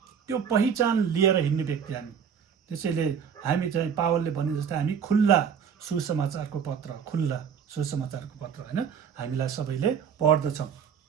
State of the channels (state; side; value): quieter; left; 7.4 dB